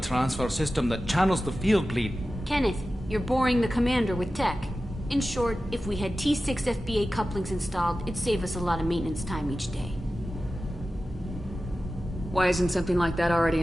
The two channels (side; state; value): both; normal; correlation 0.94